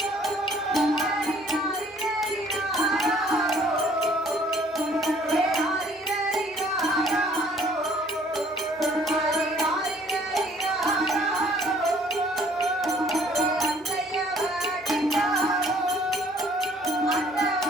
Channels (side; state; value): both; normal; correlation 0.59